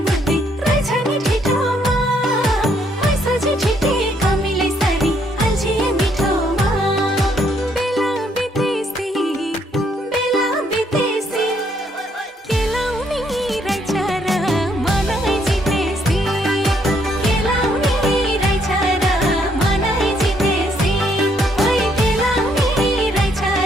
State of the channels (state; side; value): normal; both; correlation 0.70